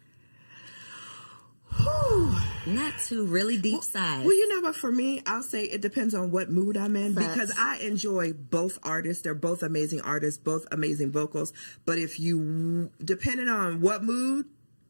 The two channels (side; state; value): both; inverted; correlation -1.00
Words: Not two really deep sides. Well, you know what? For me, I'll say it depends on what mood I'm in because I enjoy both artists. They're both amazing artists, both amazing vocals. But if you, depending on what mood,